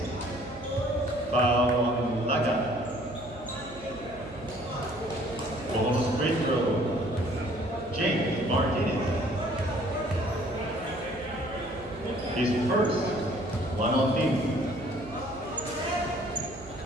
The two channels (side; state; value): right; noise; hum, 19 dB below the sound